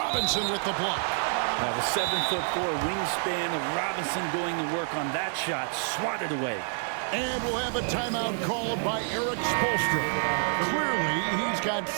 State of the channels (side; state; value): left; silent; digital silence